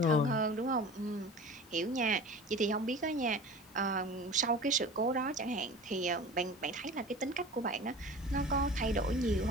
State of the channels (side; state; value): both; normal; correlation 0.38